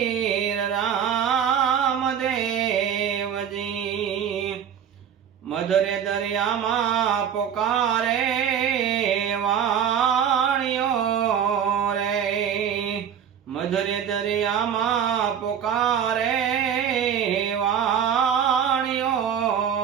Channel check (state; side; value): quieter; left; 8.4 dB